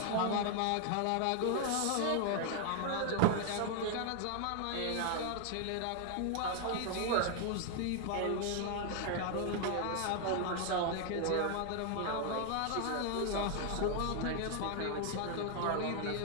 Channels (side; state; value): both; different; correlation 0.00